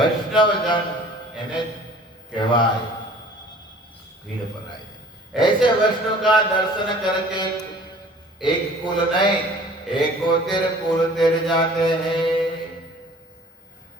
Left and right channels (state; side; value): normal; both; correlation 0.50